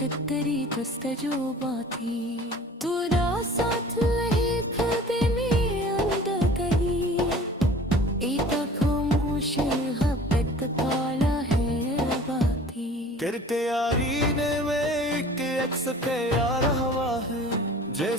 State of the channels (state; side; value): normal; both; correlation 0.46